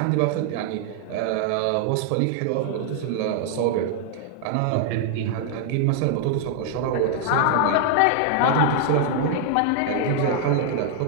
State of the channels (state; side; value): different; both; correlation 0.00